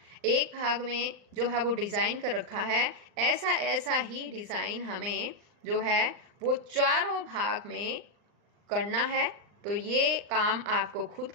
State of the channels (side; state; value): left; late; 39 ms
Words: एक भाग में जो है वो डिज़ाइन कर रखा है, ऐसा ही डिज़ाइन हमें जो है वो चारों भाग में करना है। तो ये काम आपको खुद